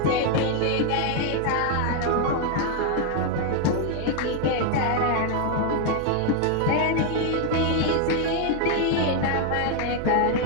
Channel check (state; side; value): different; both; correlation 0.01